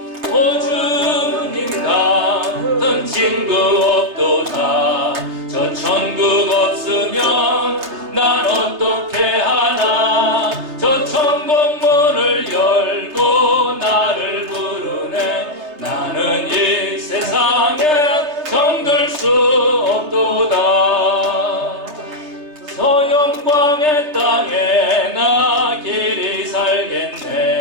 친구 없도다. 저 천국 없으면 난 어떻게 하나. 저 천국 문을 열고 나를 부르네. 나는 이 세상에 정들 수 없도다. 저 영광의 땅에 나 길이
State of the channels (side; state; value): left; late; 3.3 ms